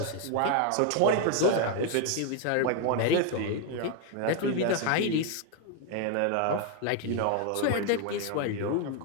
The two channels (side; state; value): both; different; correlation 0.01